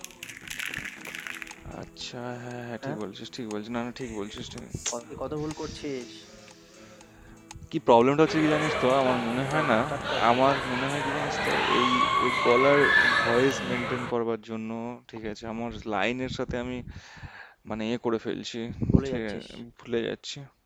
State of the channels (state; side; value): identical; both; correlation 1.00